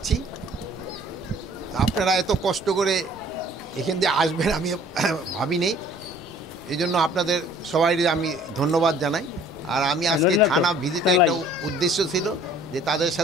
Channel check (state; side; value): normal; both; correlation 0.54